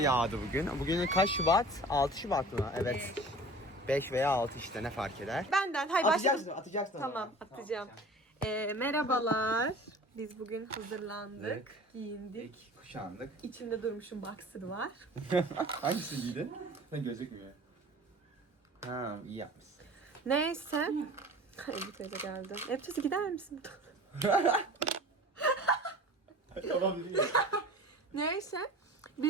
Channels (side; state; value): both; normal; correlation 0.41